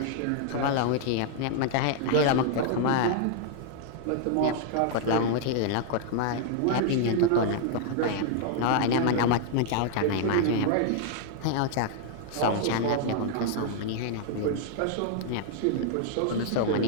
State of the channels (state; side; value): different; both; correlation 0.00